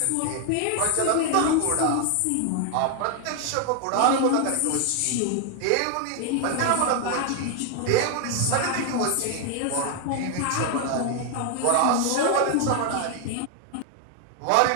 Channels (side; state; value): both; different; correlation 0.01